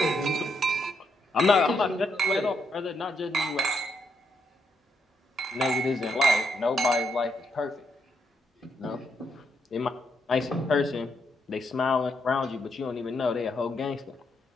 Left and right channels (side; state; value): both; normal; correlation 0.78